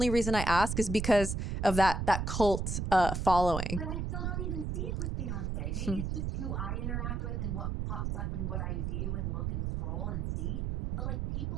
reason I ask is because of that cult following. But I still don't even see it with Beyonce. Maybe it's just who I interact with and what pops up and what I view and look and scroll and see. But like,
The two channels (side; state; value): right; noise; rumble, 2 dB below the sound